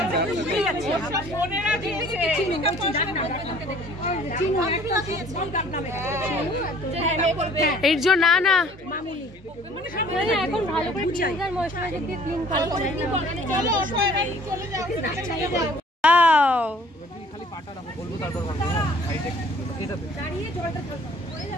এর জন্য না না এখন ভালো করে ক্লিনজার ময়শ্চারাইজার দিয়ে ক্লিন করো। খালি পাটা রাখো, বলবো তারপর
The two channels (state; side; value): normal; both; correlation 0.54